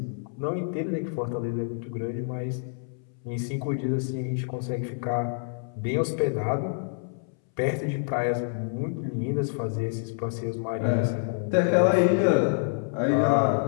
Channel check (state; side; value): silent; right; 60 dB below the other